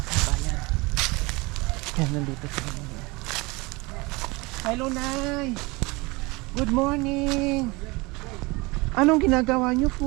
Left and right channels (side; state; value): left; quieter; 24.9 dB